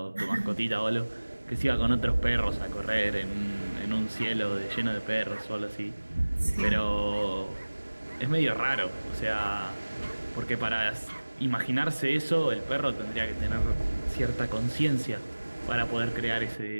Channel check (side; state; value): both; inverted; correlation -1.00